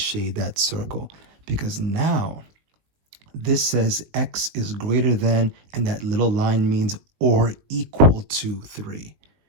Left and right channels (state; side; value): late; left; 20 ms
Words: that circle. Because now this says x is greater than, and that little line means or equal to 3.